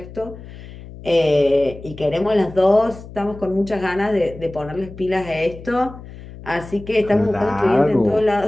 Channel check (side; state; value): left; noise; hum, 15 dB below the sound